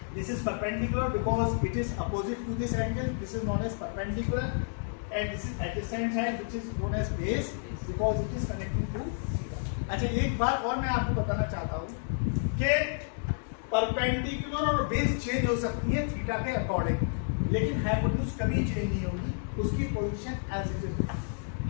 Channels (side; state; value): right; silent; digital silence